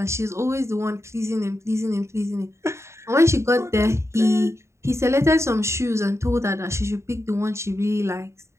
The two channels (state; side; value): late; left; 0.13 ms